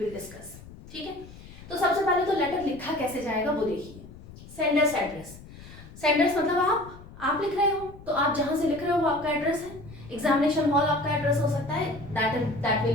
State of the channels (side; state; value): left; noise; rumble, 18 dB below the sound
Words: डिस्कस. ठीक है. तो सबसे पहले तो लेटर लिखा कैसे जाएगा वो देखिए. Sender's address. सेंडर्स मतलब आप लिख रहे हो तो आप जहां से लिख रहे हो वो आपका एड्रेस है. एग्जामिनेशन हॉल आपका एड्रेस हो सकता है, that